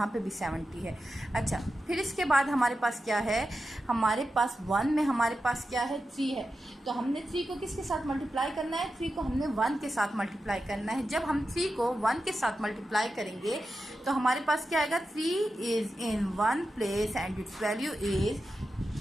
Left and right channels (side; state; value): both; normal; correlation 0.91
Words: पे भी 70 है। अच्छा, फिर इसके बाद हमारे पास क्या है, हमारे पास 1 में हमारे पास क्या है, 3 है। तो हमने 3 को किसके साथ मल्टीप्लाई करना है, 3 को हमने 1 के साथ मल्टीप्लाई करना है। जब हम 3 को 1 के साथ मल्टीप्लाई करेंगे तो हमारे पास क्या आएगा, 3 is in 1 place and it's value is